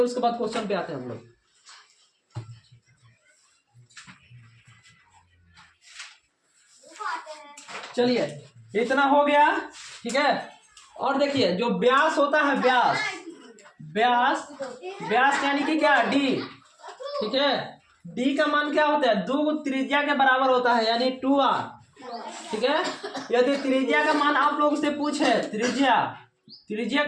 बाद क्वेश्चन पे आते हैं हम लोग। चलिए इतना हो गया, ठीक है। और देखिए जो व्यास होता है, व्यास यानी कि क्या, डी, ठीक है। डी का मान क्या होता है, 2 त्रिज्या के बराबर होता है, यानी 2r, ठीक है। यदि त्रिज्या का मान आप लोग से पूछे, त्रिज्या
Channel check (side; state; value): both; identical; correlation 1.00